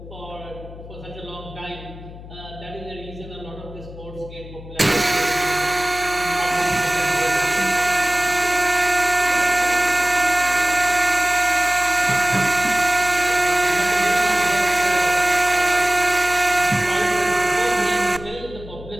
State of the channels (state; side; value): noise; left; hum, 15 dB below the sound